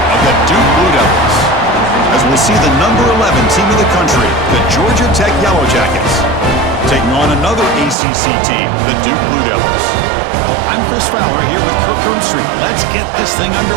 of the Duke Blue Devils. As we'll see the number 11 team in the country, the Georgia Tech Yellow Jackets, taking on another ACC team, the Duke Blue Devils. Well, I'm Chris Fowler here with Kirk Hermstreet. Let's get this thing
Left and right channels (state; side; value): drops out; left; at 8.0 s